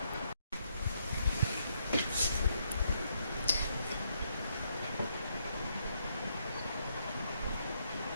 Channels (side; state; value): both; inverted; correlation -0.75